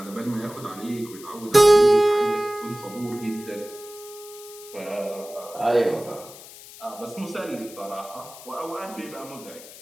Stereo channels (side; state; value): left; noise; hiss, 17 dB below the sound